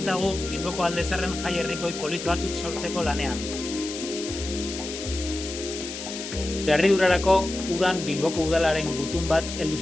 Bilboko Alde Zaharren jai herrikoi polit batzuk sortzeko lanean. Harridurarako udan Bilboko udalaren gutun bat heldu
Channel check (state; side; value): noise; left; hiss, 8 dB below the sound